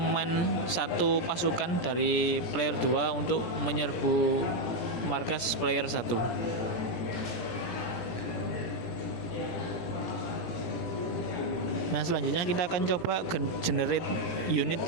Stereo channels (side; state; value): right; late; 17 ms